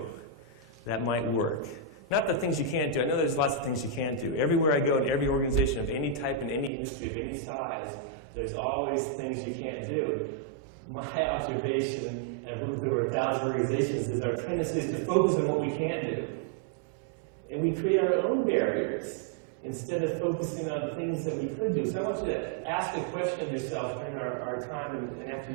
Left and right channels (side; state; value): left; drops out; at 6.7 s